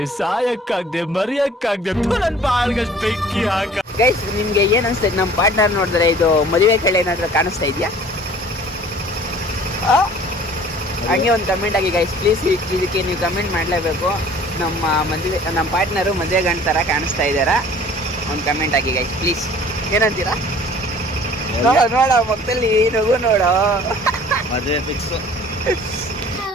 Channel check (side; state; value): both; normal; correlation 0.50